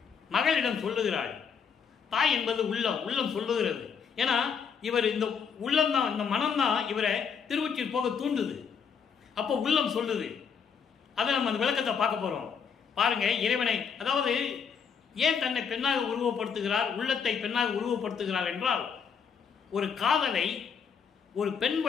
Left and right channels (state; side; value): quieter; right; 6.6 dB